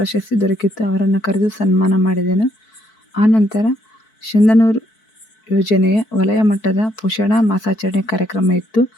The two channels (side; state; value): right; late; 4.6 ms